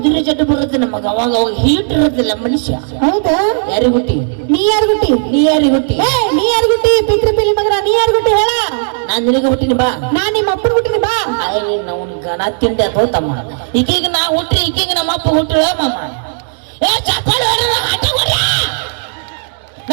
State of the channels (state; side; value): silent; left; digital silence